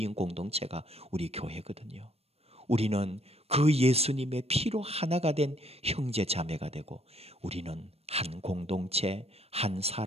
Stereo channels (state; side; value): late; left; 0.29 ms